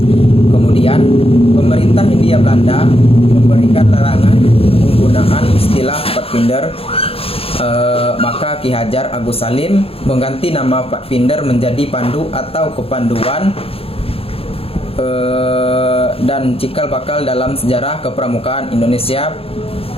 Kemudian pemerintah Hindia Belanda memberikan larangan penggunaan istilah Pathfinder, maka Ki Hajar Agus Salim mengganti nama Pathfinder menjadi Pandu atau Kepanduan, dan cikal bakal dalam sejarah kepramukaan Indonesia.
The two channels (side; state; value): right; late; 0.28 ms